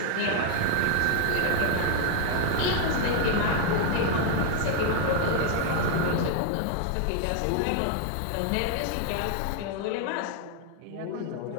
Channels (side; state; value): both; different; correlation 0.00